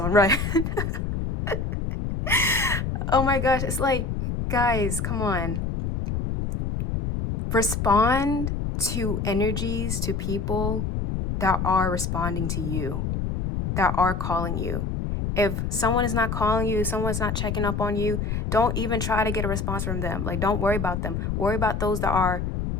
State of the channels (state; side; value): noise; left; rumble, 2 dB below the sound